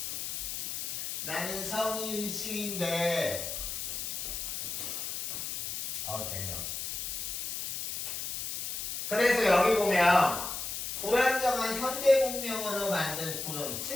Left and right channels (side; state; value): left; noise; hiss, 4 dB below the sound